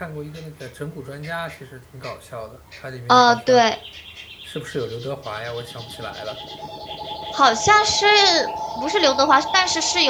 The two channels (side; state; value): both; identical; correlation 1.00